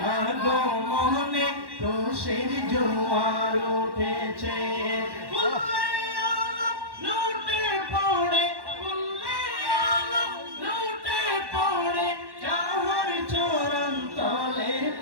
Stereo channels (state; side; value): late; left; 1.1 ms